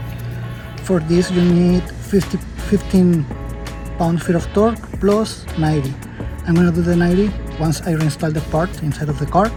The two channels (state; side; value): identical; both; correlation 1.00